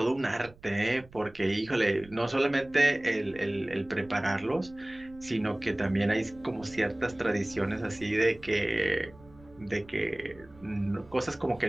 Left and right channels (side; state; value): right; noise; rumble, 23 dB below the sound